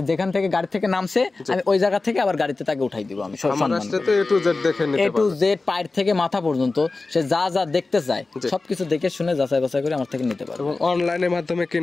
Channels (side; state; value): right; quieter; 3.6 dB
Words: যেখান থেকে গাড়ি থেকে নামছে আমি ওই জায়গা থেকে আবার গাড়িতে তাকে উঠাই দিব। আমি সম্মান করে A to Z দেখে নিতে পারবো, A to Z পায়ের থেকে মাথা পর্যন্ত সে যা যা দেখতে চায় সবকিছু দেখে শুনে যাচাই বাছাই করে আমার থেকে নিতে পারবে। এবং অনলাইনের মাধ্যমে